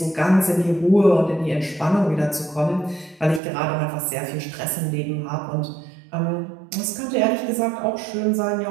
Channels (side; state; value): left; drops out; at 3.4 s